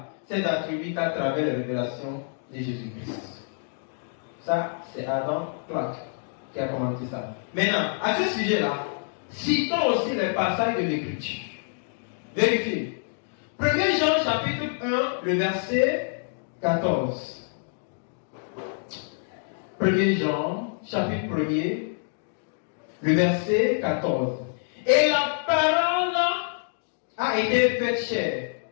ses attributs qu'à travers la révélation de Jésus-Christ. Ça, c'est Adam Clark qui a commenté ça. Maintenant, à ce sujet-là, citons aussi les passages de l'Écriture. Vérifiez. 1 Jean chapitre 1, le verset 14. 1 Jean chapitre 1er, le verset 14. Et la parole a été faite chair.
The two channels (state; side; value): silent; right; digital silence